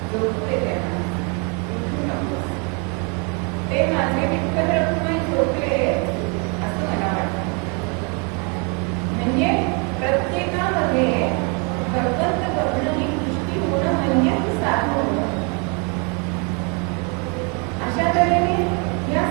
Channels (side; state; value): left; quieter; 34.2 dB